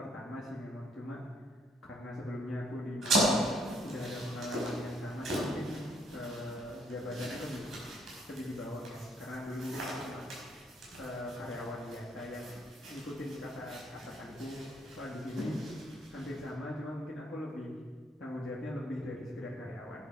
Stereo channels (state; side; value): normal; both; correlation 0.68